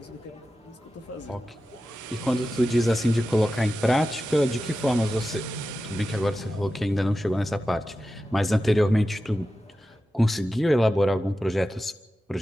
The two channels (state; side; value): normal; both; correlation 0.93